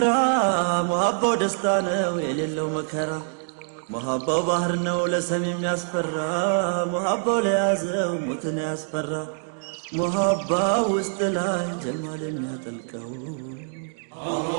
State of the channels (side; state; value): left; silent; digital silence